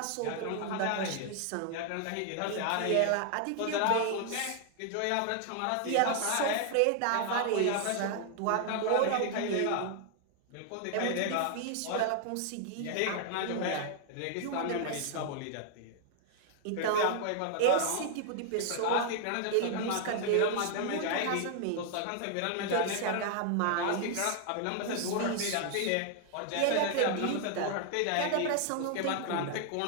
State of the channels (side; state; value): both; different; correlation 0.00